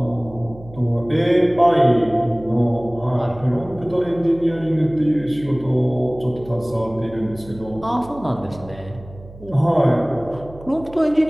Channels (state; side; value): noise; right; hum, 18 dB below the sound